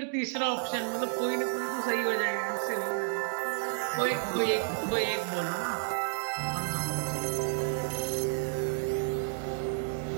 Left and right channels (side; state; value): left; silent; digital silence